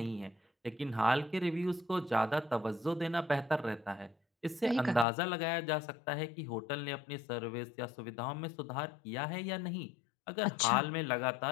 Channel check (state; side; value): drops out; right; at 5.1 s